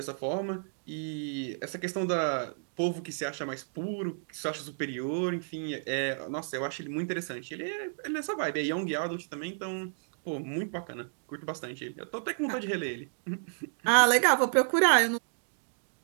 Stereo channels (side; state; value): left; silent; digital silence